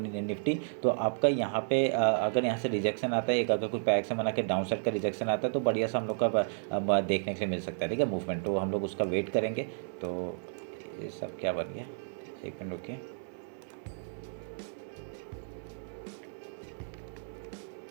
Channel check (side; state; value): left; silent; digital silence